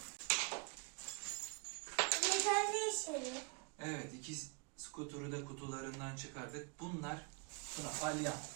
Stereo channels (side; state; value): left; quieter; 35.6 dB